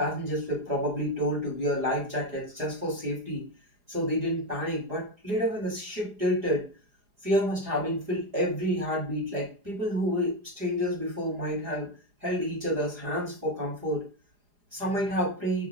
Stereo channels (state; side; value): late; left; 4.8 ms